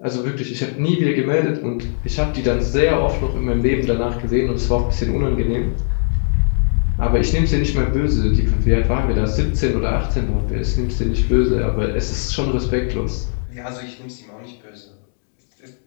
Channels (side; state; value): right; silent; digital silence